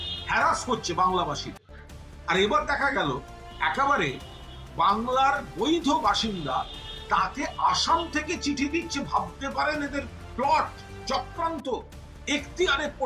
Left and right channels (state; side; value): identical; both; correlation 1.00